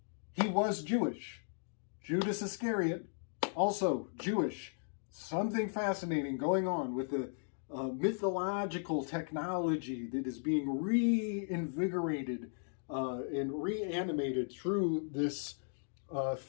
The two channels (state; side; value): silent; right; digital silence